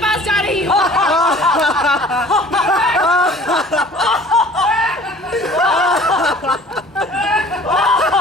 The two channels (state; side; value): normal; both; correlation 0.49